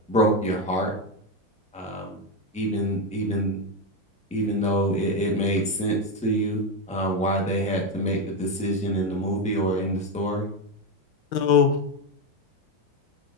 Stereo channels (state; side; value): normal; both; correlation 0.09